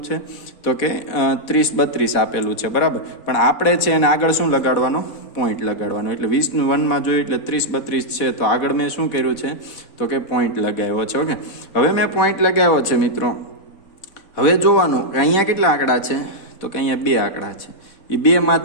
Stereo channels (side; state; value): right; late; 4.1 ms